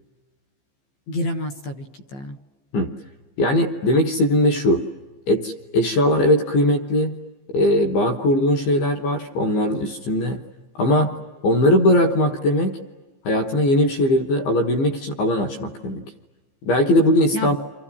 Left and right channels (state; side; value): late; right; 15 ms